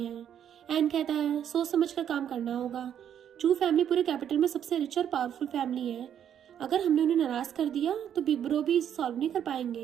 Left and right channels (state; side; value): quieter; left; 9.4 dB